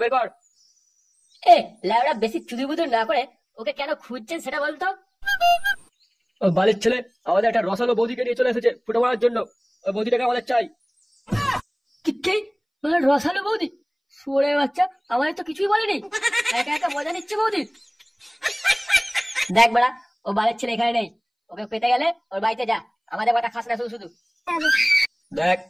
বের কর। এ লাউড়া বেশি চুদি বুদুর না করে ওকে কেন খুঁজছেন সেটা বলতো। ও বালির ছেলে আমাদের একটা রসালো বৌদিকে নিয়ে চলে এসেছে ফুটো মারার জন্য, ওই বৌদিটাকে আমাদের চাই। কি রসালো বৌদি? শুয়োরে বাচ্চা, আমাদের তো কিছুই বলেনি, একা একা মজা নিচ্ছে বৌদি। দেখ বড়া, ও বালের ছেলে এখানে নেই, ওকে পেতে গেলে ওর বাড়িতে যা, আমাদের কথা খাস না শুধু শুধু। দেখ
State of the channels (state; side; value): identical; both; correlation 1.00